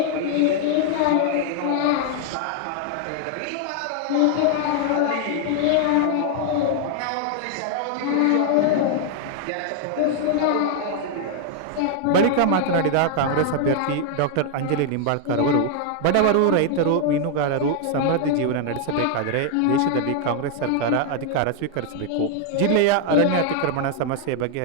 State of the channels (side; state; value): both; different; correlation 0.00